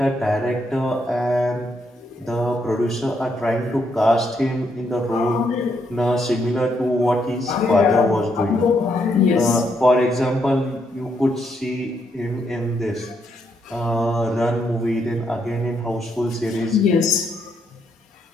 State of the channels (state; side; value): normal; both; correlation 0.76